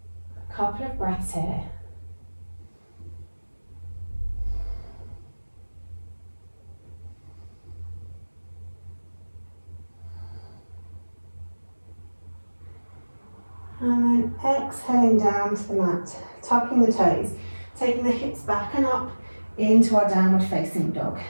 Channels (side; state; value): both; inverted; correlation -1.00